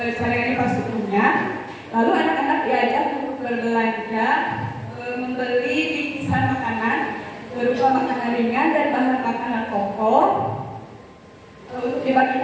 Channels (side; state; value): both; identical; correlation 1.00